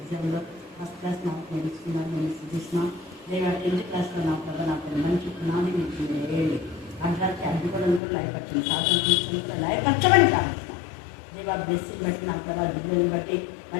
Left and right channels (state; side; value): drops out; right; at 8.0 s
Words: ఫస్ట్ క్లాస్ నాకు నేర్చుకున్నారు. నేను సుష్మా దేవ 10th క్లాస్లో నా ప్రభావ నాకు మంచి పునాది మీకు వేయండి. అంటానికి అడ్డుకోవడం కూడా లైఫ్ స్వాతంత్రించడానికి లైఫ్ వచ్చమని ప్రార్థిస్తున్నాం. దేవ బ్లెస్సింగ్ బట్టి నా ప్రభావ దిగుని బట్టి